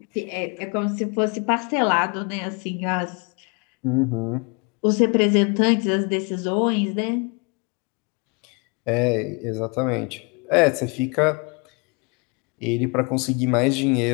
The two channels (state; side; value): quieter; right; 32.3 dB